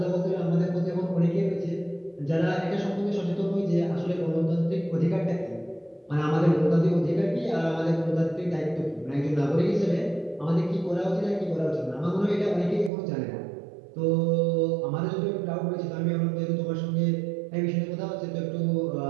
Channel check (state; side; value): drops out; left; at 12.9 s